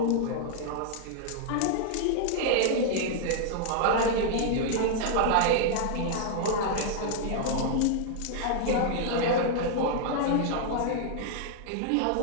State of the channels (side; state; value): both; different; correlation -0.01